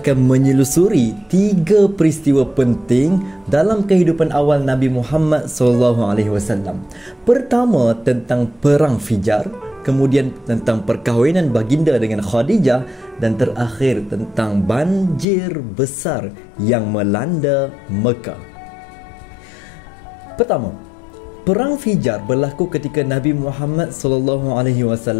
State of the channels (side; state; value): right; drops out; at 15.2 s